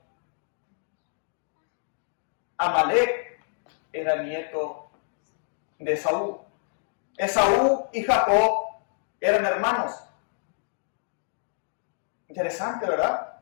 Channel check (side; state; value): right; silent; digital silence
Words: Amalek era nieto de Esaú. Esaú y Jacob eran hermanos. Interesante, ¿verdad?